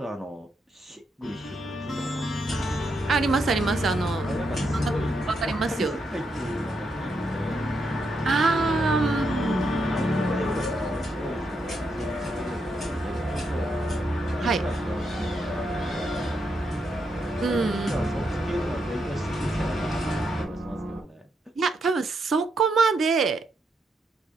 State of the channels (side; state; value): both; normal; correlation 0.80